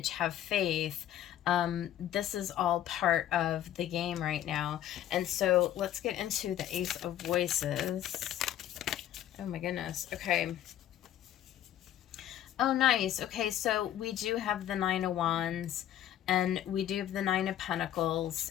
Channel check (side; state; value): right; quieter; 11.7 dB